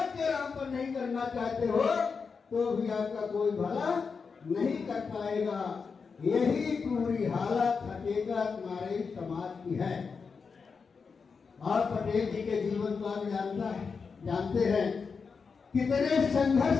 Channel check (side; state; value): right; quieter; 5.3 dB